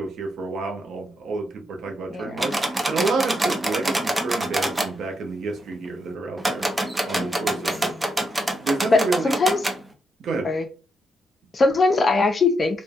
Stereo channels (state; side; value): normal; both; correlation 0.81